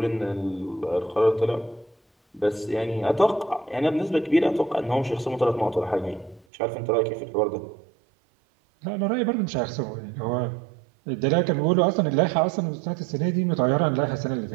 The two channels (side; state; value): left; drops out; at 6.5 s